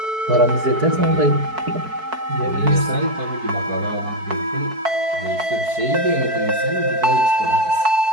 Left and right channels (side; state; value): left; late; 4.6 ms